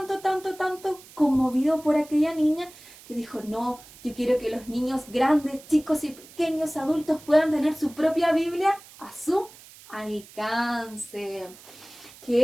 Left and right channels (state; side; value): noise; right; hiss, 21 dB below the sound